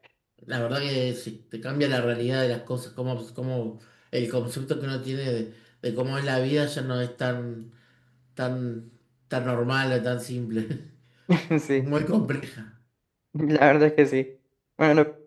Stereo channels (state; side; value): identical; both; correlation 1.00